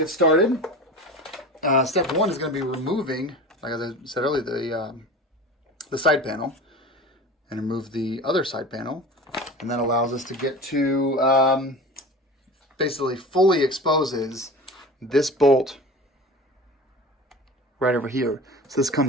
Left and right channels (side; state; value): both; normal; correlation 0.34